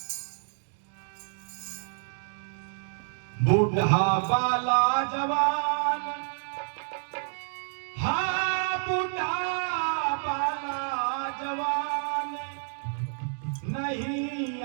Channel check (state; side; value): silent; left; digital silence